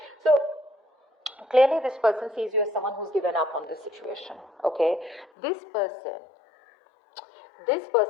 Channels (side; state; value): right; drops out; at 5.3 s